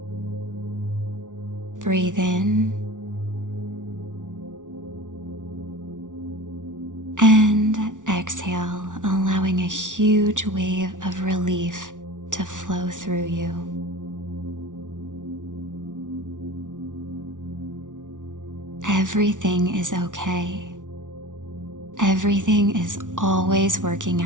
Breathe in and exhale, allowing a huge wave of relief to flow through you. Everything is okay. Everything is always working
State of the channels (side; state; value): left; late; 0.87 ms